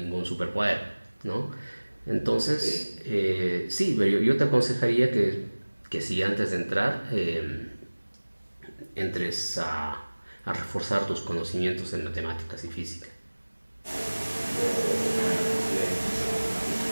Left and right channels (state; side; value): inverted; both; correlation -1.00